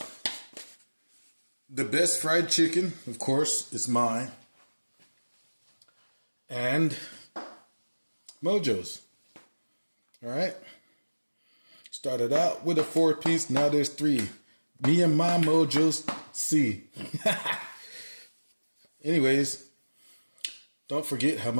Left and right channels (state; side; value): inverted; both; correlation -1.00